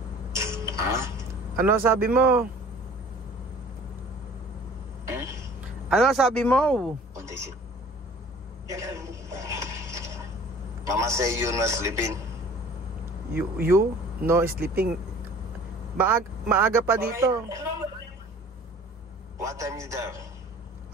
Ha? Ano sabi mo? Ano sabi mo? Mama say you not sleeping. You no sleeping. Maaga pa dito. What time is there?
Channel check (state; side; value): normal; both; correlation 0.48